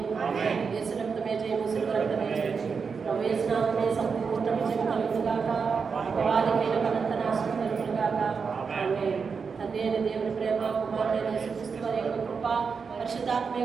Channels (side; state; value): left; quieter; 5.5 dB